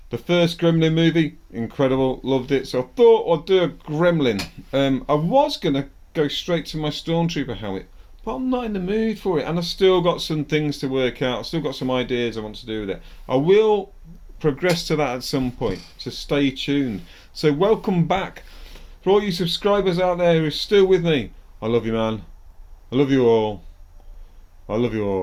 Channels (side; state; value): both; identical; correlation 1.00